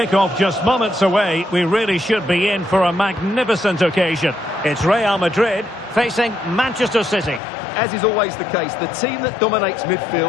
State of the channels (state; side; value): drops out; right; at 7.4 s